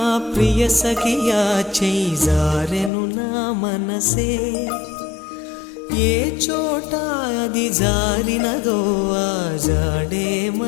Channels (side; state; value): right; drops out; at 2.9 s